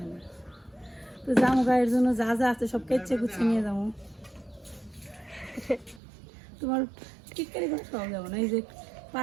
না। তো জামু গায়ের জন্য যা যা আছে সব কেচে কুচে নিয়ে যাবো। তোমার টিটকারি করে খাওয়া যাবো না। এই যে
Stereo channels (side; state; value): left; drops out; at 6.0 s